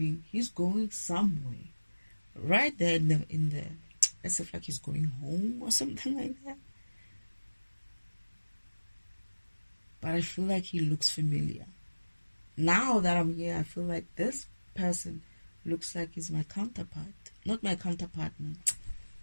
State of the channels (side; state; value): both; inverted; correlation -1.00